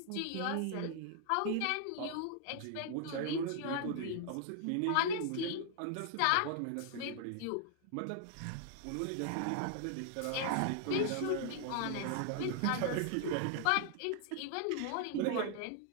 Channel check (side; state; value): both; different; correlation 0.00